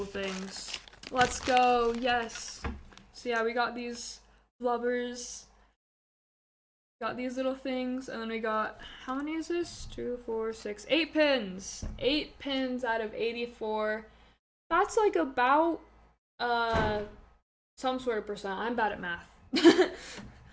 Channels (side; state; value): both; identical; correlation 1.00